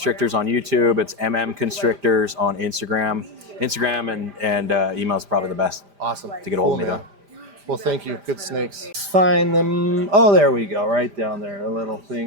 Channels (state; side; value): late; left; 5.0 ms